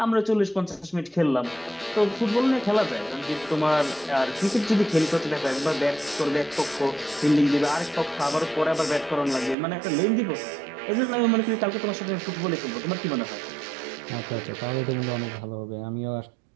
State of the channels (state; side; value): drops out; left; at 9.6 s